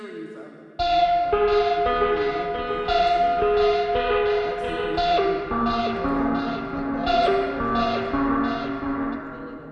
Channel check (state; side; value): identical; both; correlation 1.00